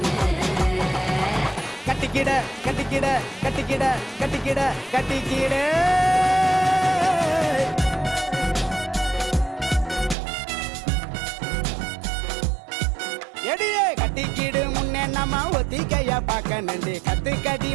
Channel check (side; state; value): left; drops out; at 10.2 s